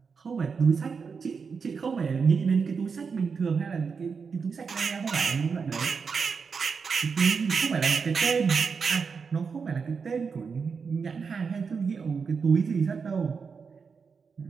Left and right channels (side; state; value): left; quieter; 5.5 dB